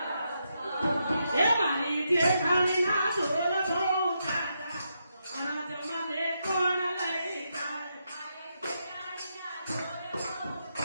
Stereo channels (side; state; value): both; inverted; correlation -0.82